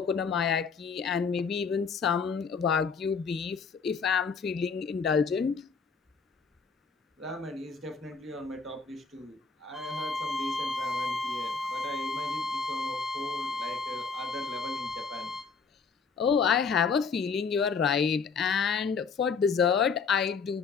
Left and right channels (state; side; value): quieter; right; 5.2 dB